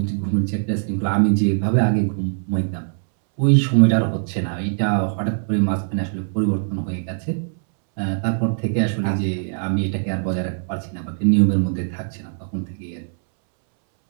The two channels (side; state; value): left; silent; 65 dB below the other